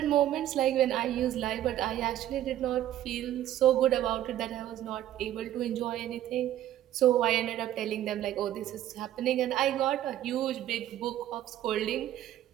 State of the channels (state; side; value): quieter; left; 12.6 dB